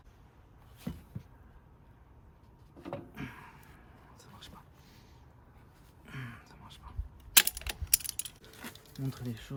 Ça marche pas. Ça marche pas. Montre les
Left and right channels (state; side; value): identical; both; correlation 1.00